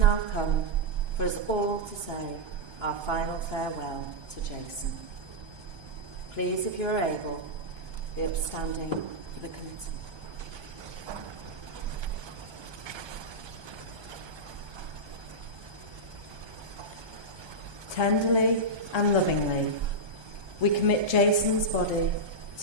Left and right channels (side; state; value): left; late; 1.3 ms